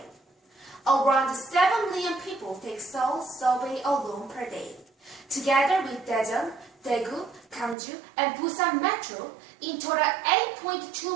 Around 7 million people take Seoul subway alone per day. Together with Daejeon, Daegu, Gangju, and Busan Metro, in total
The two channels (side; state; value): left; drops out; at 7.8 s